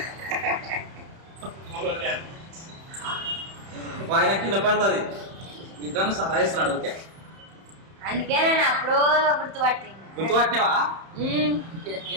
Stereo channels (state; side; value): late; left; 31 ms